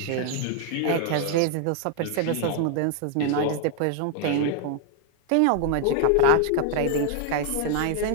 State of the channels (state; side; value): different; both; correlation 0.00